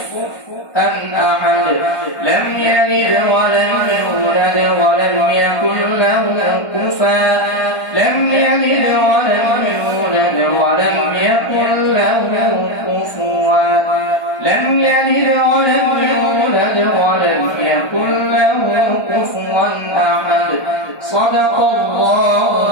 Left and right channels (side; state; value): right; late; 1.4 ms